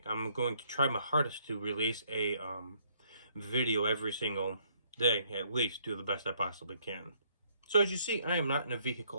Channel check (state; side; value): inverted; both; correlation -0.67